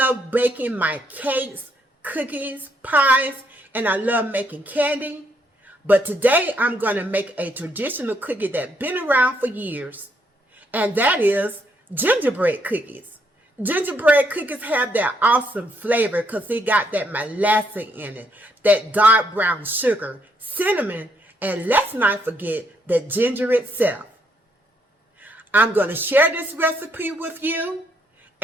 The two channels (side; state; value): both; normal; correlation 0.73